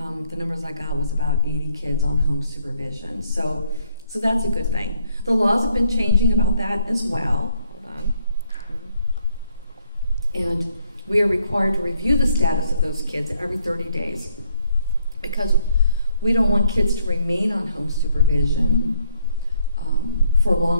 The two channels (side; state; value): both; inverted; correlation -0.71